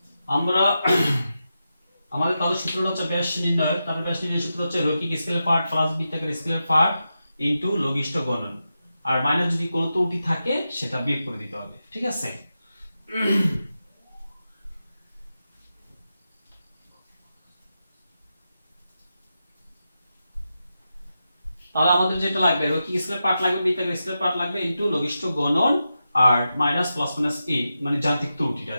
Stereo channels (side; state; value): both; inverted; correlation -0.89